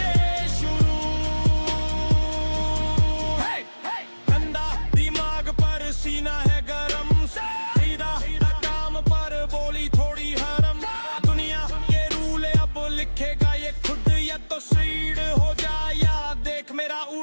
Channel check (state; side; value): inverted; both; correlation -1.00